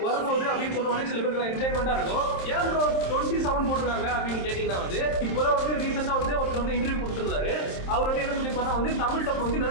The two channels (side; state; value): right; late; 27 ms